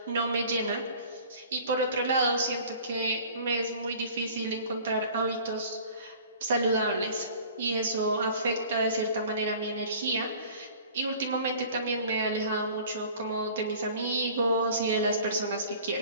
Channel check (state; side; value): inverted; both; correlation -0.47